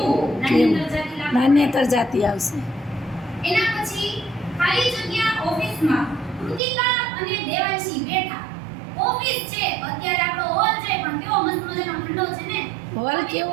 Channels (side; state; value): left; drops out; at 6.6 s